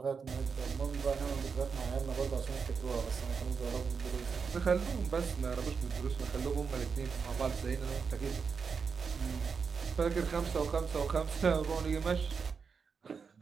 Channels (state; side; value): quieter; left; 5.7 dB